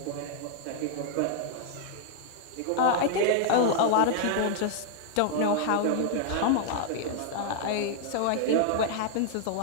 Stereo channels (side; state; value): both; different; correlation -0.01